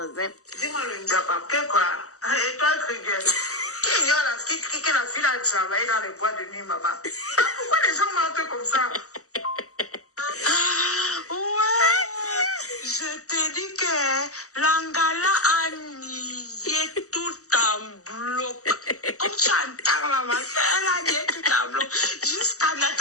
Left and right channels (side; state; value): right; late; 0.65 ms